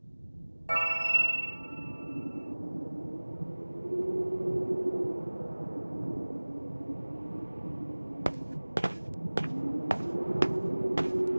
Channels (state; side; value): inverted; both; correlation -1.00